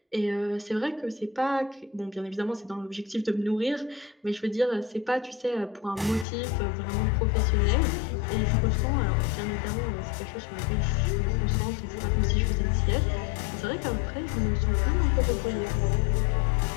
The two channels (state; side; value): drops out; right; at 6.2 s